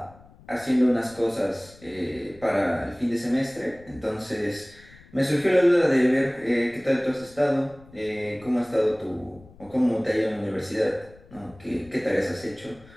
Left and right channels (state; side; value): noise; left; rumble, 24 dB below the sound